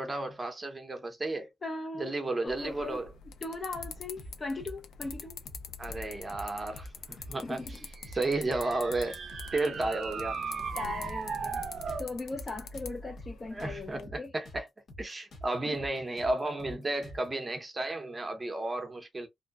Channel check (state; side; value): normal; both; correlation 0.88